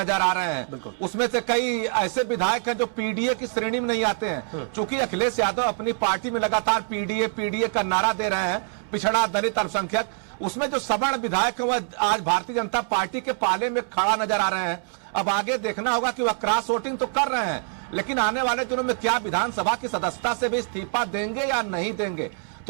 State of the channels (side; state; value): left; silent; 57 dB below the other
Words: आ रहे हैं। उसमें से कई ऐसे विधायक हैं जो पीडीए की श्रेणी में नहीं आते हैं, क्योंकि अखिलेश यादव अपनी पार्टी में लगातार पीडीए का नारा दे रहे हैं, पिछड़ा दलित अल्पसंख्यक। उसमें जो सवर्ण विधायक है वह आज भारतीय जनता पार्टी के पाले में खड़ा नजर आ रहे हैं। अब आगे देखना होगा कि वह क्रॉस वोटिंग तो कर रहे हैं, लेकिन आने वाले दिनों में क्या विधानसभा की सदस्यता से भी इस्तीफा देंगे या नहीं देंगे।